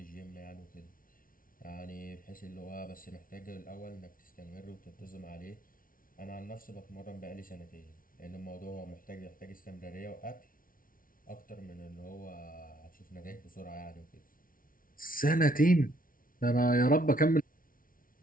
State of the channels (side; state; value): right; late; 0.40 ms